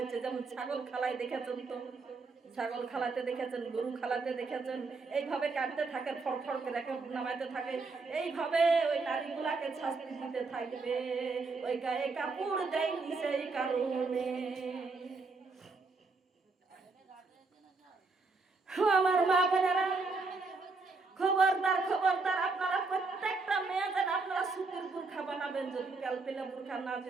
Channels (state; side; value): quieter; left; 3.9 dB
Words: যেমন ছাগল খালায় দেখেছেন তো, ছাগল খালাতে দেখেছেন, গরু খালাতে দেখেছেন, এইভাবে কাটতে থাকে, ফড়ফড় করে নামাইতে থাকে, এইভাবে ওই নারীগুলাকে শাস্তি দিতে থাকবে। ওই গায়ে কাপড় দেয়নি সেই কারণে। আমার মা বোনেরা, খবরদার খবরদার, আপনারা প্রত্যেকটা মেয়ে যেন আপনারা সুতির বুরখা বানাবেন। যদি কালপেলা বুরখা না